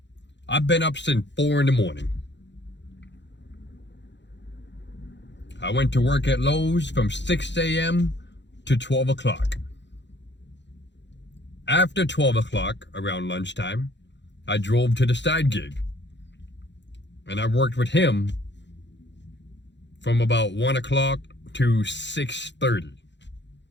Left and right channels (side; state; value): right; late; 0.52 ms